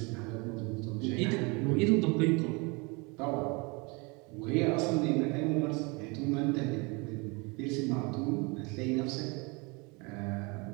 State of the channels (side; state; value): left; quieter; 28.7 dB